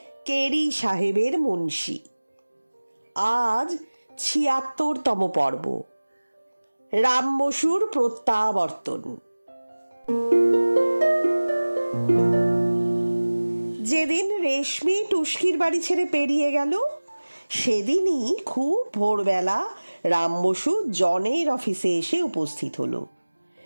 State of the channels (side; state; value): both; inverted; correlation -1.00